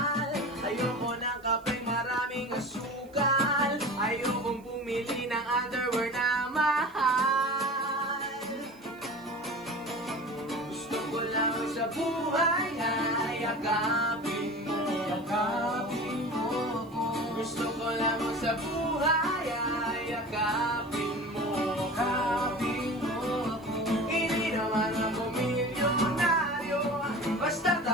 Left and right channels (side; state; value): right; noise; hiss, 29 dB below the sound